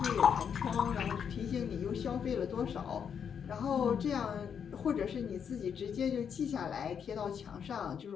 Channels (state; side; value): quieter; right; 7.5 dB